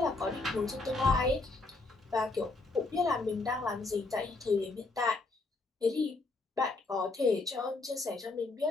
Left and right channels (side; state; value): right; quieter; 3.5 dB